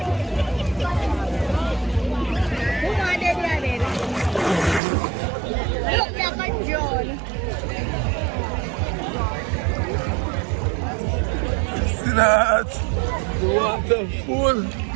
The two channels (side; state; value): left; drops out; at 4.8 s